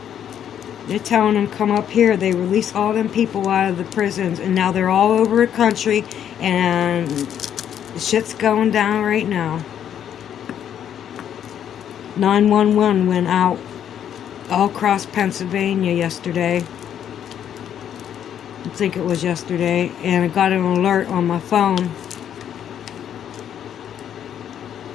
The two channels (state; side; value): quieter; right; 9.5 dB